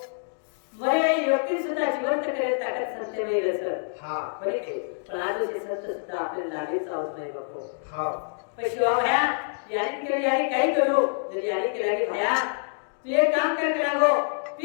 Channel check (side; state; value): right; silent; digital silence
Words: सत्यमेव रस हा बरे काही पण आज असे सत्य सुद्धा आपल्याला लागे चावत नाही बापू हा पण शिवा भया याने केलं याने काही करू जर याने केला की भया तू एक काम कर करावो